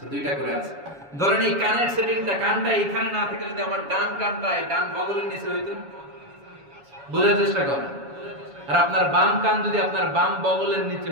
2টা করে আছে। ধরেন এই কানের সেটিংটা, কানটা এখানে না থেকে যদি আমার ডান কানটা এই ডান বগলের নিচে হইতো, বোঝার চেষ্টা করেন। আর আপনার বাম কান যদি আপনার বাম বগলের নিচে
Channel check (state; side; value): late; left; 7.1 ms